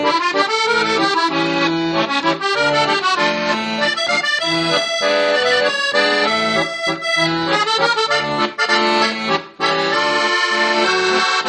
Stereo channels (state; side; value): identical; both; correlation 1.00